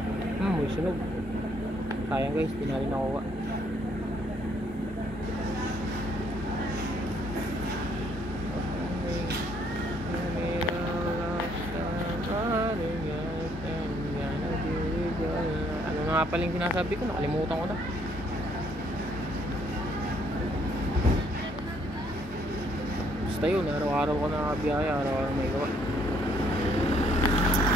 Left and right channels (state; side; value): normal; both; correlation 0.67